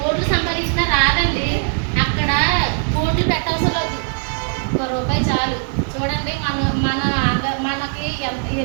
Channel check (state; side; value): silent; left; digital silence